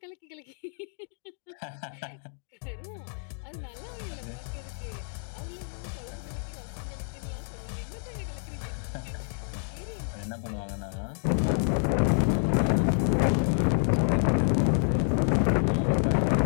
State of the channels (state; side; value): silent; right; 59 dB below the other